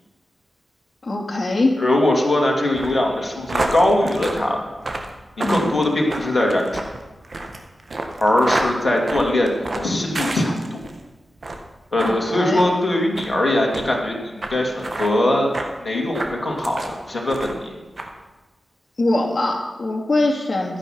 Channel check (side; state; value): both; normal; correlation 0.91